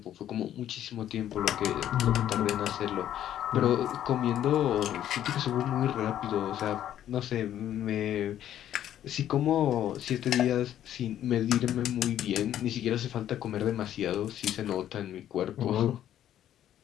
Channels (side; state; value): right; quieter; 11.3 dB